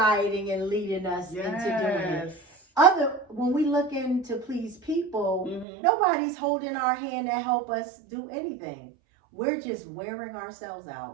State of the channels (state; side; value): drops out; left; at 5.7 s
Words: and leading us into doing it. When we look in to please people, nobody's holding our hand to help us do anything. We're just wearing ourselves